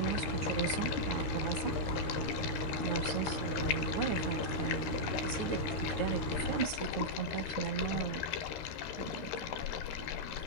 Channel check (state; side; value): late; right; 13 ms